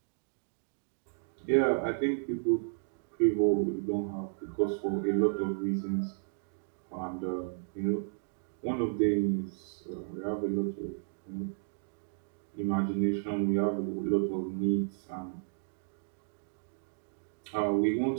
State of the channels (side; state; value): left; silent; digital silence